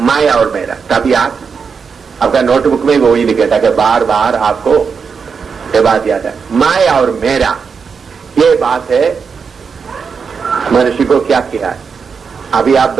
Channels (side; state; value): left; quieter; 5.8 dB